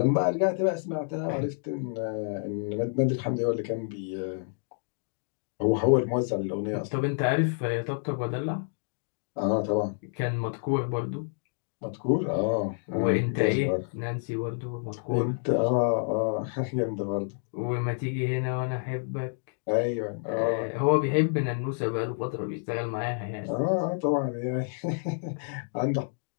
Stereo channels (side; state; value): right; silent; digital silence